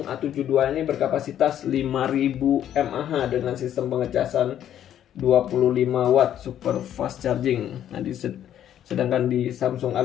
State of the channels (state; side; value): quieter; right; 10.7 dB